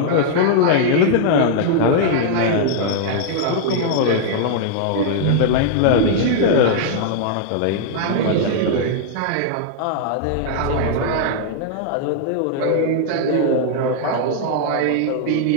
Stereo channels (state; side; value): different; both; correlation -0.01